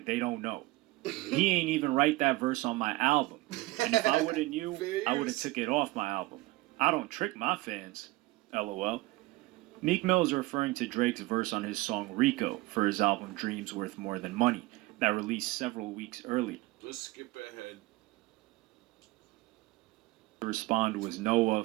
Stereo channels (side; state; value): left; quieter; 20.6 dB